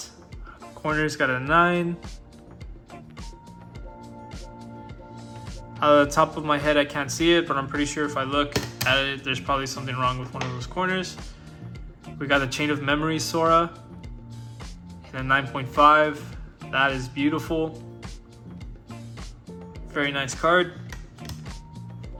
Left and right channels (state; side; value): identical; both; correlation 1.00